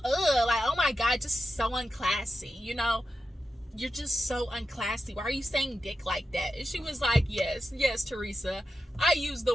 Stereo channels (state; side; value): normal; both; correlation 0.90